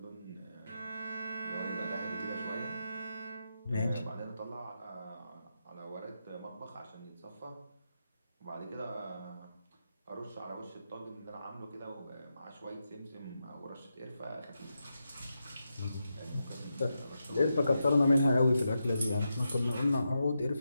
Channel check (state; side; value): inverted; both; correlation -0.87